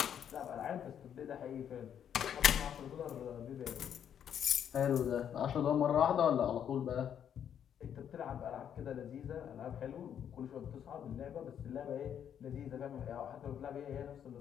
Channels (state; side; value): quieter; right; 9.0 dB